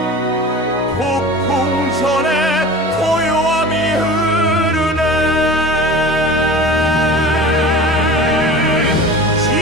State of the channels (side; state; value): both; normal; correlation 0.37